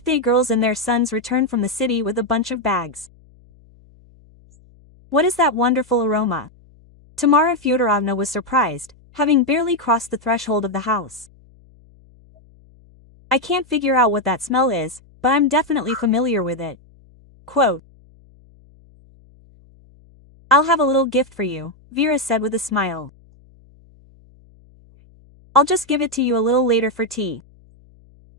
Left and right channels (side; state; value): left; noise; hum, 28 dB below the sound